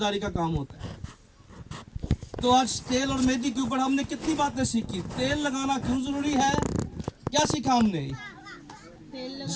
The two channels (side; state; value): both; identical; correlation 1.00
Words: का काम होता है। तो आज तेल और मेहंदी के ऊपर हमने कितनी बातें सीखी। तेल लगाना क्यों ज़रूरी है, क्या सीखा हमने?